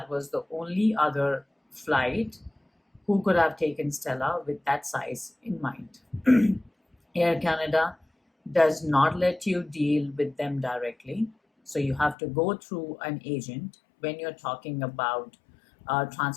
was the only other flight who could have taken Stella with that size in mind. Air Canada does not let you deal with them directly. So you have to go through an agent when you're talking about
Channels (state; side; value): drops out; right; at 12.2 s